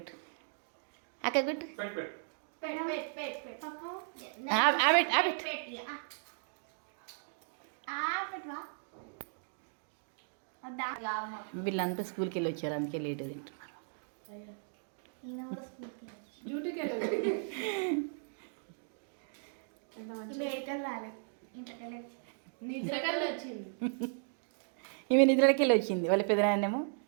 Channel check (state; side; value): silent; left; digital silence